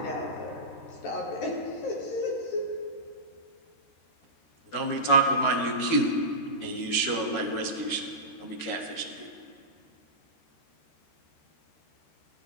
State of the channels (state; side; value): late; right; 13 ms